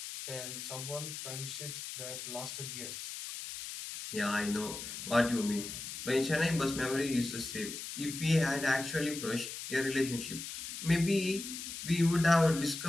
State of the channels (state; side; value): noise; left; hiss, 8 dB below the sound